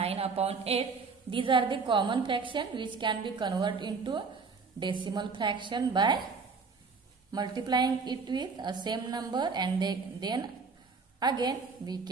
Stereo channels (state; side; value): quieter; left; 4.8 dB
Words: upon 8. These are the common fraction which can be converted into decimal fraction by multiplying it with a same number, and then again we